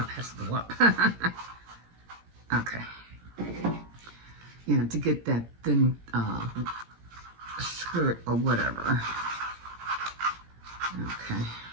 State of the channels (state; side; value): late; left; 17 ms